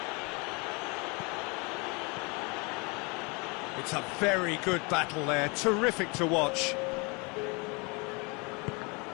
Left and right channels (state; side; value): quieter; right; 29.7 dB